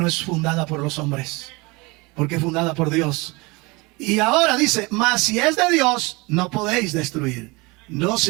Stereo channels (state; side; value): quieter; left; 25.4 dB